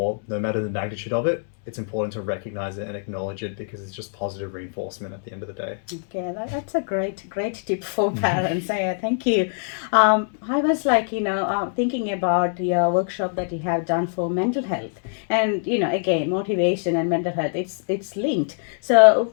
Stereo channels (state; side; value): silent; right; digital silence